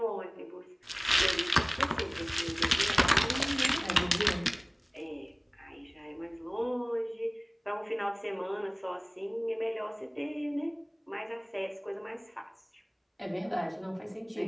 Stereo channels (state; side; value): identical; both; correlation 1.00